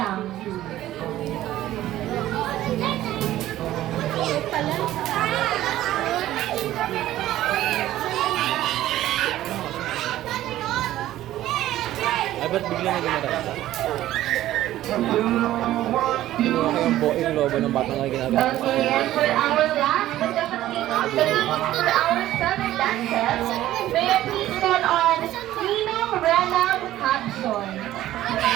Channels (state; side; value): quieter; left; 14.1 dB